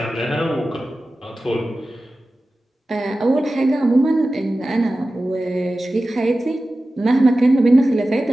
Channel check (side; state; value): both; normal; correlation 0.95